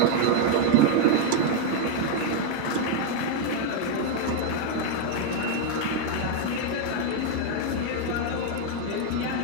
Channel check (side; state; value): both; different; correlation 0.01